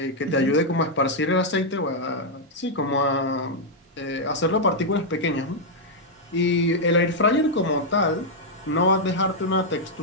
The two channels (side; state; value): both; normal; correlation -0.04